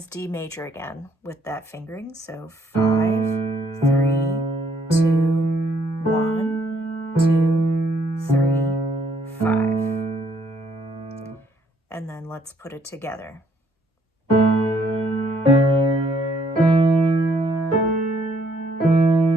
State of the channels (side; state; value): both; normal; correlation 0.67